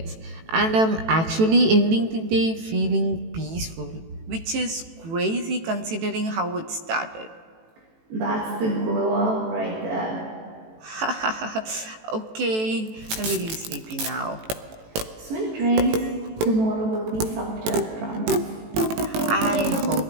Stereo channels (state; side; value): late; left; 18 ms